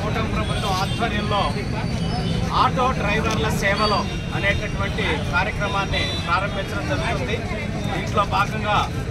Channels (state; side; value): identical; both; correlation 1.00